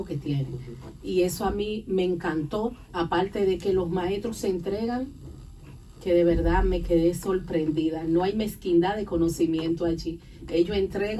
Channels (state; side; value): identical; both; correlation 1.00